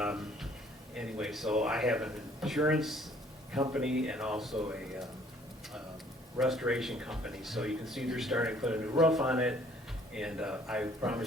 anyway, so I have an insurance company and also a restoration company. So you can see they're starting to put a new roof on it, and I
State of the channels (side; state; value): both; normal; correlation 0.59